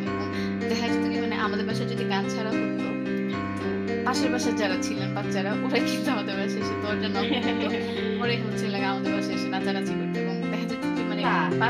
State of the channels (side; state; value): both; identical; correlation 1.00